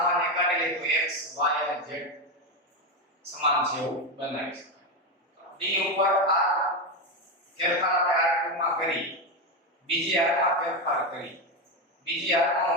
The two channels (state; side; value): normal; both; correlation 0.12